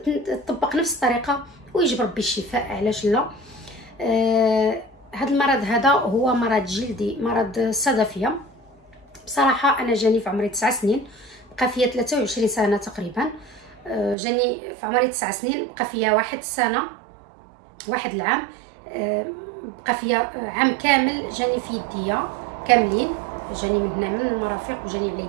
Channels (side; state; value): left; drops out; at 14.2 s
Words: تطبق نفس الطريقه ويجي بربي الشفاء، علاش لا. هذا المرض هذا هو مرض جلدي، مرض الصدفيه. بصراحه انا جاني في عمري 9 سنين، بقى فيا 23 سنه تقريبا. جاني في عمري 9 سنين، بقى فيا واحد العام، بقى فيا عام كامل جاني في يديا كاملين، جاني من هنا من المرافق وجاني على